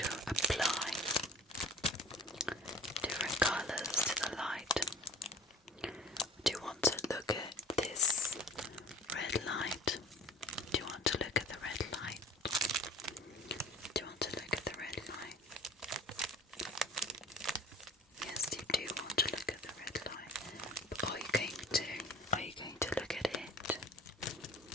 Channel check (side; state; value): both; normal; correlation 0.43